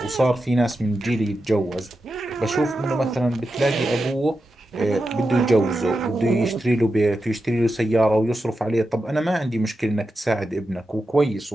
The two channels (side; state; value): both; normal; correlation 0.90